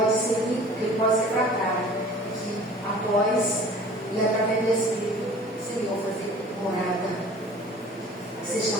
ser limpo, que ele pode ser tratado, que após e através do Espírito, Senhor, fazer morada, ser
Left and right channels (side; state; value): both; normal; correlation 0.46